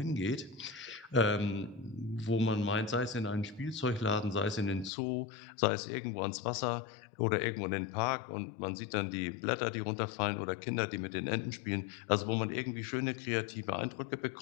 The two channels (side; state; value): right; drops out; at 4.9 s